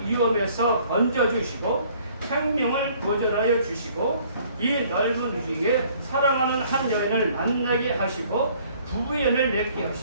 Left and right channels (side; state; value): both; inverted; correlation -0.58